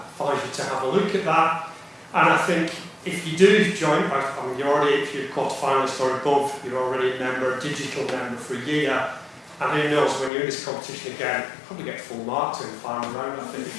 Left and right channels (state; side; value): drops out; right; at 10.3 s